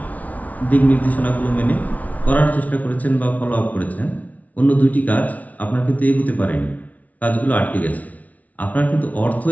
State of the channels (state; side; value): late; right; 0.071 ms